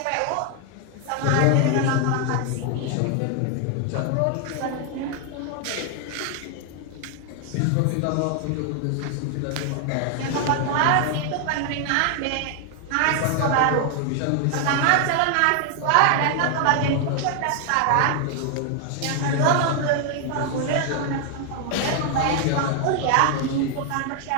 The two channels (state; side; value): different; both; correlation 0.00